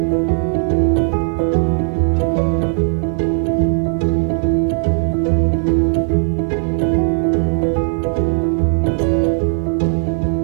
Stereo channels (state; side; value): silent; left; 68 dB below the other